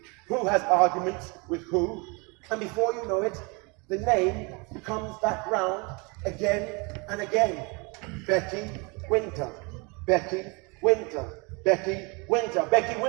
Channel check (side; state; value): left; quieter; 29.6 dB